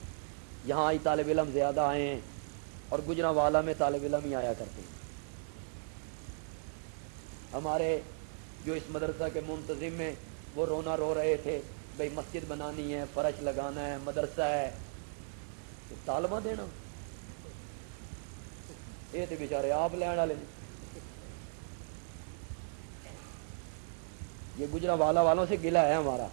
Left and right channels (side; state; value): left; silent; digital silence